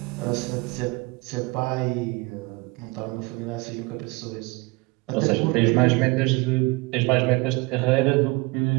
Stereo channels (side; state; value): left; quieter; 25.5 dB